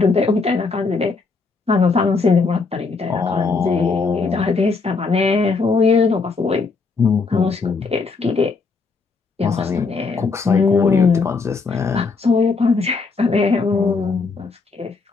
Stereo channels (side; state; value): right; quieter; 4.4 dB